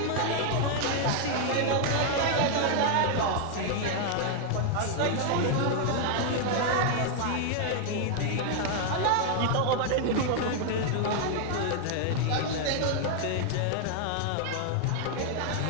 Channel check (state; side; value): different; both; correlation 0.00